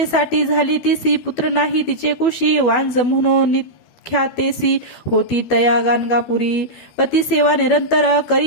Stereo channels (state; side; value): late; right; 12 ms